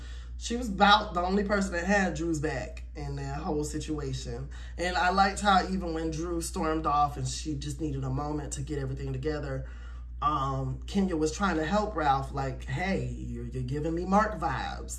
she was about the only person that had Drew's back in that whole situation. And I liked how even when Drew stormed off and she just needed a moment to get everything together, Kenya was trying to help Ralph, like, hey, you're giving me Mark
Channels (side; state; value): both; identical; correlation 1.00